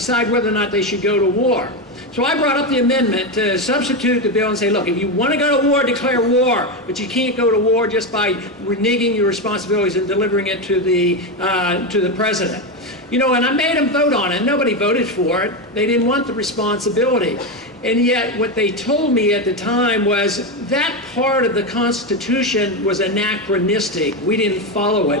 whether or not they should go to war. So I brought up the amendment to substitute the bill and say, look, if you want to go to war, declare war, but you can't go to war just by reneging your responsibilities and delivering it to the president. You know, and I made them vote on it. Nobody voted for it. They didn't want the responsibility. And yet what they told me at the time was that part of the Constitution was anachronistic. We didn't follow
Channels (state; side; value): normal; both; correlation 0.12